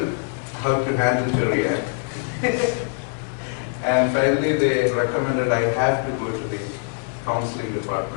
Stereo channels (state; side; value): silent; right; 57 dB below the other